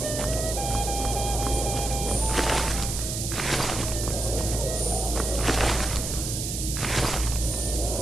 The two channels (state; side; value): noise; right; hiss, 4 dB below the sound